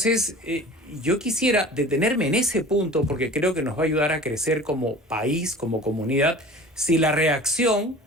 yo quisiera detenerme en ese punto porque creo que nos va a ayudar a crecer como país, como comunidad, si la reacción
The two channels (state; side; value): normal; both; correlation 0.41